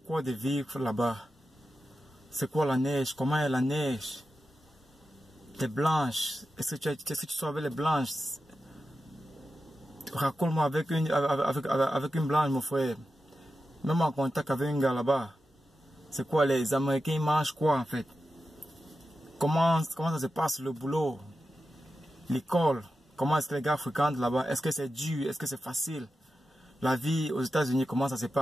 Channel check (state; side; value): normal; both; correlation 0.91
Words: quoi de vivre là-bas? C'est quoi la neige? Comment est la neige? Les blanches, est-ce que tu savais les blanches? Raconte-moi avec une blanche, mon frère. Même en contact avec un gars là-bas. C'est quoi, les Américains ils mangent quoi en fait? Comment ça se passe le boulot? L'école? Comment est-ce que les gars fréquentent là-bas? Est-ce que c'est dur? Est-ce que c'est facile? La vie aux États-Unis, comment ça se